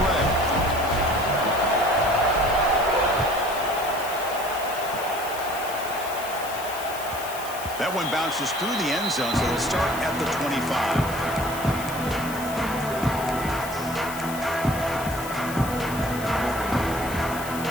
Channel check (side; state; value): left; noise; hiss, 12 dB below the sound